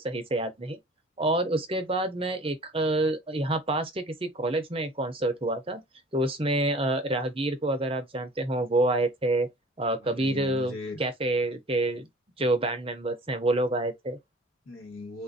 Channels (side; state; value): both; normal; correlation 0.46